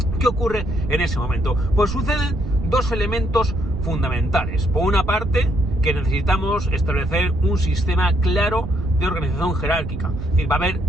¿Qué ocurre en ese momento? Pues suceden 2 elementos fundamentales. Por una parte, que necesitamos establecer un sistema claro de organización jerárquica. Es decir, va a haber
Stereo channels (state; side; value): noise; right; rumble, 7 dB below the sound